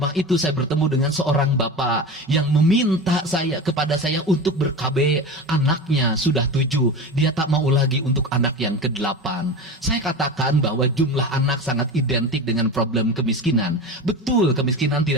itu, saya bertemu dengan seorang bapak yang meminta kepada saya untuk ber-KB. Anaknya sudah 7. Dia tak mau lagi untuk anak yang ke-8. Saya katakan bahwa jumlah anak sangat identik dengan problem kemiskinan. Betul, kemiskinan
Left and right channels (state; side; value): normal; both; correlation 0.28